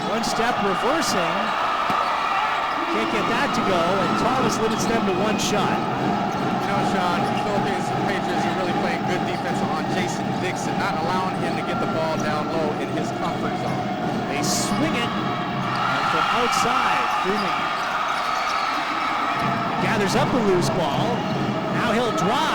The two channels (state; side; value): identical; both; correlation 1.00